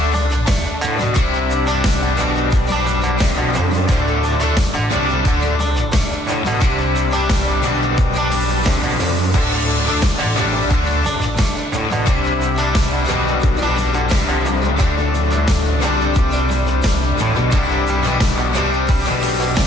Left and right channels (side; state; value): both; normal; correlation 0.68